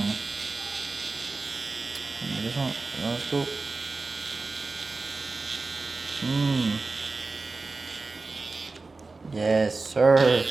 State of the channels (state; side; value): quieter; left; 3.7 dB